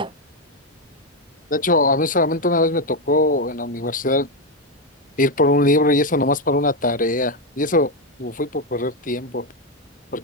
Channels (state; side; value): normal; both; correlation 0.05